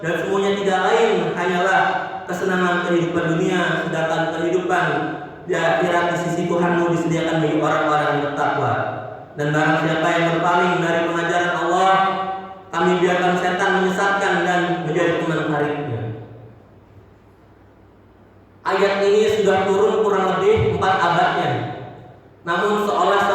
dan semuanya tidak lain hanyalah kesenangan kehidupan dunia, sedangkan kehidupan di akhirat di sisi Tuhanmu disediakan bagi orang-orang yang bertakwa. Dan barang siapa yang berpaling dari pengajaran Allah, kami biarkan setan menyesatkan dan menjadi teman karibnya. Ayat ini sudah turun kurang lebih 4 abadnya. Namun seolah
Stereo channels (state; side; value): identical; both; correlation 1.00